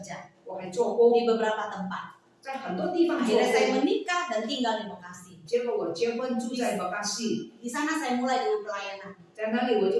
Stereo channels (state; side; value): identical; both; correlation 1.00